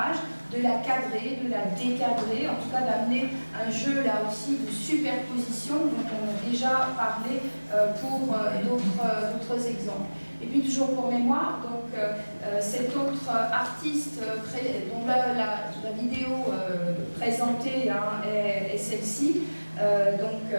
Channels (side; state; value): both; inverted; correlation -1.00